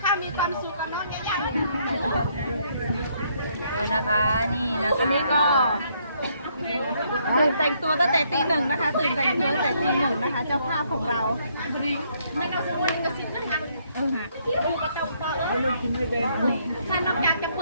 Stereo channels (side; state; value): both; inverted; correlation -0.70